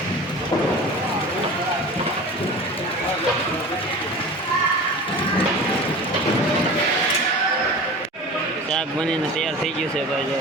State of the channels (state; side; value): normal; both; correlation 0.36